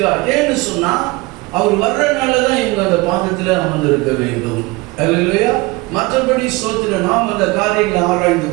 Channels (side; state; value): left; quieter; 23.1 dB